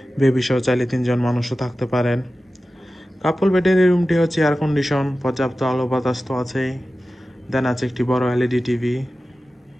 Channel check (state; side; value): normal; both; correlation 0.94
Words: বেবি সহ চাইলে 3জন মানুষও থাকতে পারেন। কাপল বেডের এই রুমটি হচ্ছে এয়ার কন্ডিশন, পর্যাপ্ত আলো বাতাস তো আছেই। দেন আছে একটি বড় এলইডি টিভি,